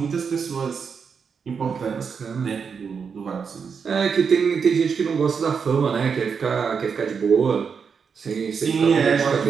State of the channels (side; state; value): left; quieter; 6.1 dB